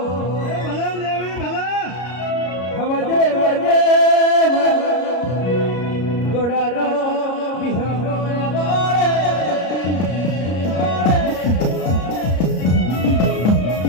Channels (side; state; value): right; late; 33 ms